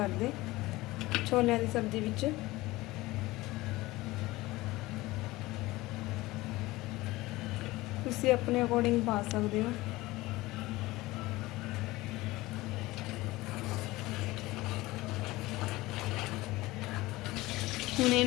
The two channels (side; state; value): right; quieter; 19.5 dB